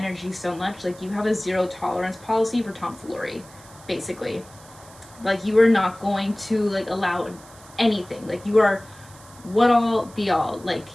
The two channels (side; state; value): right; noise; hiss, 22 dB below the sound